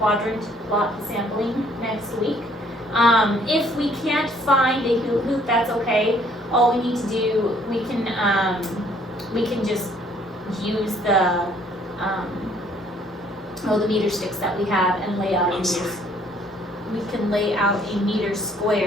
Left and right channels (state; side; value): normal; both; correlation 0.62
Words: plot sampling next week. If we can't find a hoop, that's okay. All we need to do, we can just use the meter sticks that we have and lay out a meter. We can lay out a meter